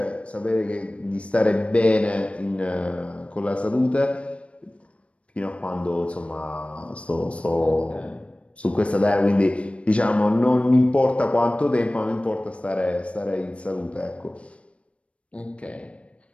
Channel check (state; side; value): late; right; 0.062 ms